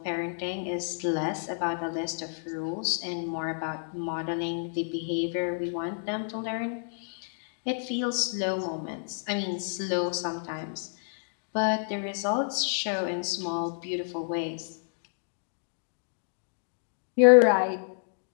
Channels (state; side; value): silent; right; digital silence